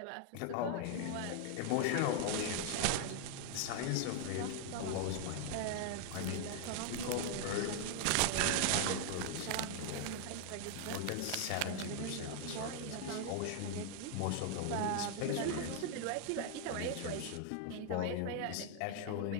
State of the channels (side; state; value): both; different; correlation 0.00